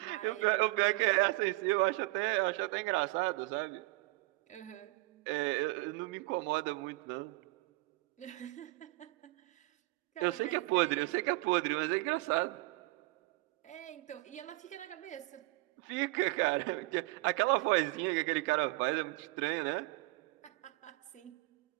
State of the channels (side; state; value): left; quieter; 22.9 dB